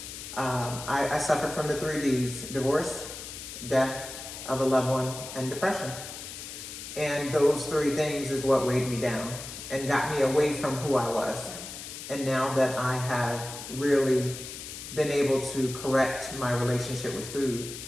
I suffered from the 3 Ds: divorce, death of a loved one, and depression. And those 3 things is what weighed me down and got me away from who I was. And now that I have really been able to correct my relationship with food,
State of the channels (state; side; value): noise; left; hiss, 10 dB below the sound